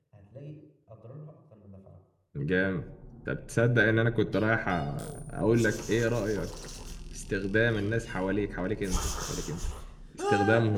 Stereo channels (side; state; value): both; identical; correlation 1.00